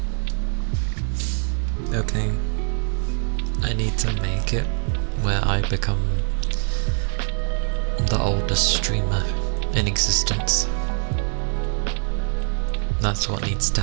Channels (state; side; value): silent; left; 63 dB below the other